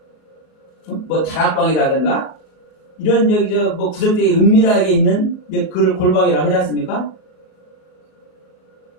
뭐 다락방이라든가 이런 저기 뭐 구석탱이 은밀하게 있는 그걸 골방이라고 하지 않습니까?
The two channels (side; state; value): right; late; 33 ms